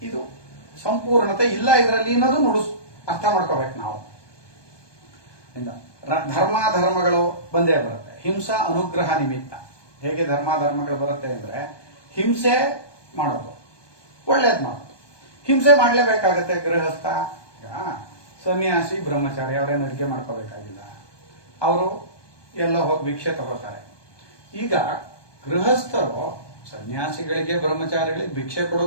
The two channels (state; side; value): late; right; 1.2 ms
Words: ಇದು ಸಂಪೂರ್ಣತೆ ಇಲ್ಲ ಇದರಲ್ಲಿ ಅನ್ನೋದು ಅರ್ಥ ಮಾಡ್ಕೋಬೇಕು ನಾವು. ಧರ್ಮಗಳು ಬಂದೇ ಬರುತ್ತೆ. ಹಿಂಸಾ ಅನುಗ್ರಹ ನಿಮಿತ್ತ. ಹೇಗೆ ಧರ್ಮಗಳು ಬರುತ್ತೆ ಅಂದ್ರೆ ಹಿಂಸೆ ಮಾಡೋದು, ಒಳ್ಳೇದ್ ಮಾಡೋದು. ಹಿಂಸೆ ಮಾಡ್ಲೇಬೇಕಾಗತ್ತೆ. ಗೃಹಸ್ಥ, ಸನ್ಯಾಸಿ, ಬ್ರಹ್ಮಚಾರಿ ಅವರೇನು ಅಡಿಗೆ ಮಾಡ್ಕೋಬೇಕಾಗಿಲ್ಲ, ಅವರು ಎಲ್ಲ ಹೋಗಿ ಭಿಕ್ಷೆ ತಗೋತಾರೆ. ಈಗ ಗೃಹಸ್ಥರು ಸನ್ಯಾಸಿಗಳಿಗೆ ಬ್ರಹ್ಮಚಾರಿಗಳಿಗೆ ಭಿಕ್ಷೆ